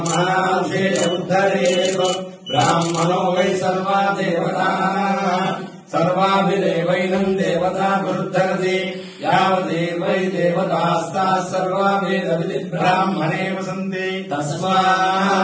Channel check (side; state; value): both; identical; correlation 1.00